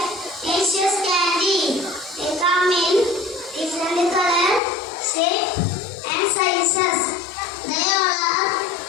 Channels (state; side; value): drops out; right; at 4.6 s